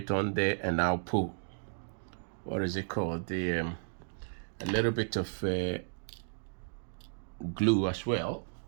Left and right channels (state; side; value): silent; left; digital silence